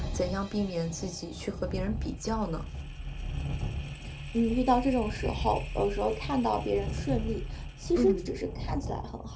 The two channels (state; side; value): identical; both; correlation 1.00